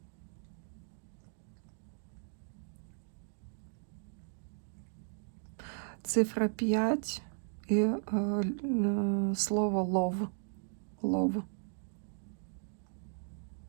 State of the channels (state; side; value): silent; left; digital silence